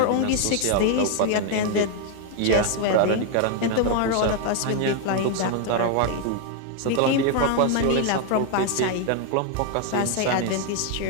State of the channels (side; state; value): both; different; correlation 0.01